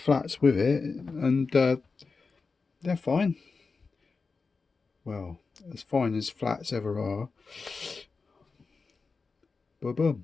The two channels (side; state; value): right; quieter; 4.5 dB